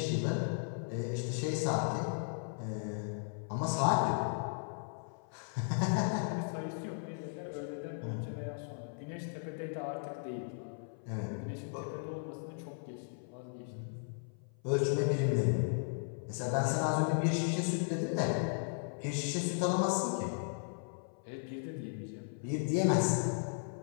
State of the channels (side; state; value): right; silent; 54 dB below the other